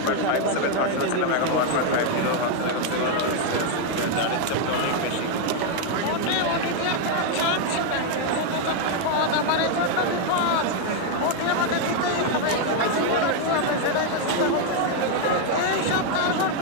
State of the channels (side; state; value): both; different; correlation 0.01